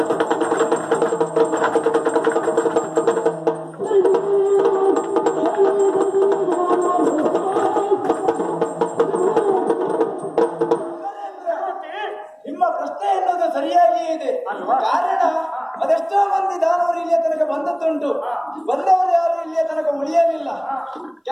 ಬಂದದ್ದುಂಟು. ಬಂದವರು ಯಾರು ಇಲ್ಲಿಯ ತನಕ ಉಳಿಯಲಿಲ್ಲ.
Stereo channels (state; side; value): identical; both; correlation 1.00